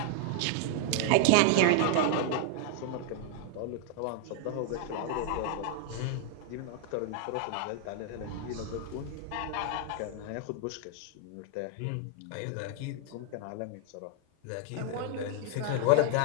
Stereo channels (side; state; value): both; different; correlation 0.00